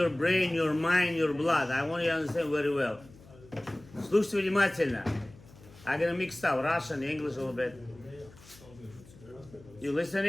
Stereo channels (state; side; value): noise; left; hum, 23 dB below the sound